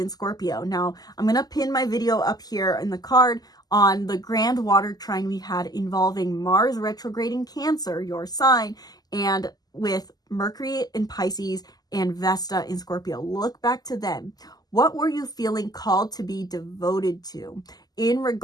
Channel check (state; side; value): late; right; 0.19 ms